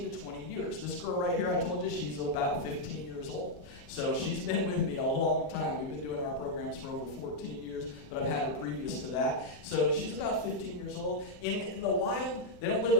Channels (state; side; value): late; right; 37 ms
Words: to 20 years. This girl right here, I told you, she's about 15 years old. So she's been with me a long time. We've been doing our programs for over 14 years, but I've had her previous to that. So she's about 15 years old. In the wild, they don't live